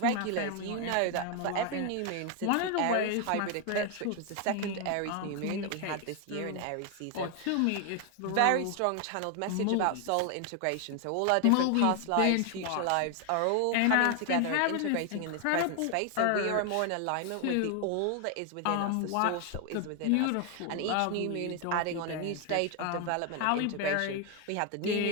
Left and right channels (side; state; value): both; different; correlation 0.00